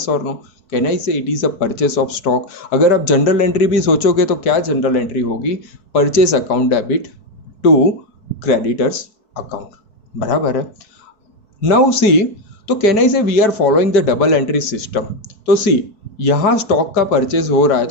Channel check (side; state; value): right; late; 4.6 ms